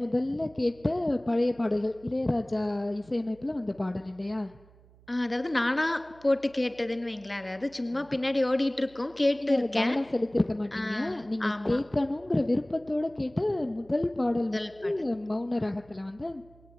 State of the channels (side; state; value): right; noise; hum, 26 dB below the sound